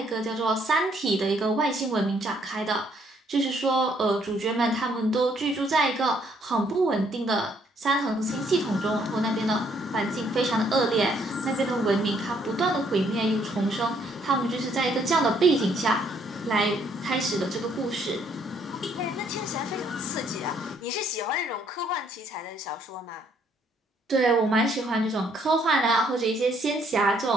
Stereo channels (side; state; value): both; normal; correlation 0.67